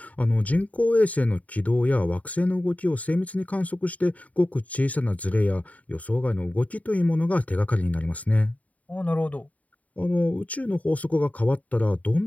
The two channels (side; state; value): right; late; 0.070 ms